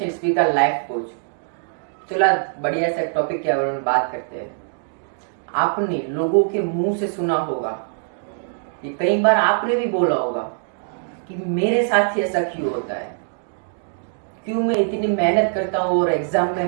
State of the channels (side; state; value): left; silent; digital silence